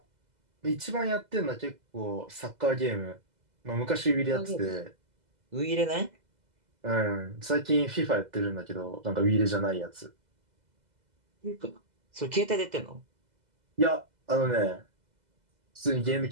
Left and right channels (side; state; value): left; late; 2.0 ms